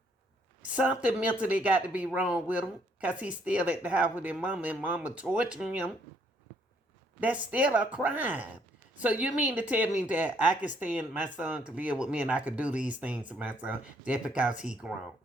something mentally got to be wrong with him because he's still at the house with his mama and mama torturing him. That's still a crime. So you mean to tell me that I can stand my son to live with me and I could do these things to my son just because he grown?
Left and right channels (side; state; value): both; normal; correlation 0.68